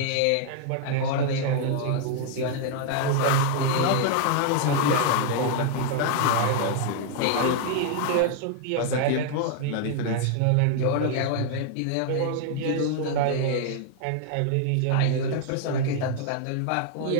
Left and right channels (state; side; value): different; both; correlation 0.00